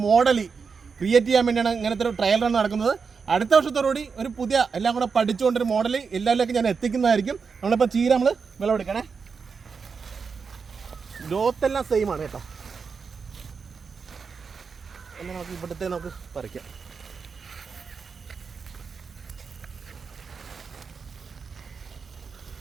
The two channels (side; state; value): left; quieter; 5.5 dB